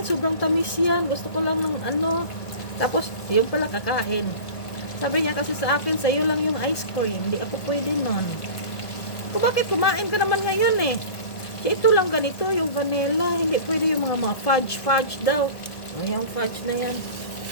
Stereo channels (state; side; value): late; right; 1.4 ms